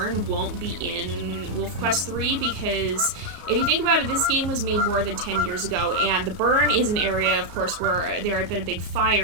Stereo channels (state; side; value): late; left; 33 ms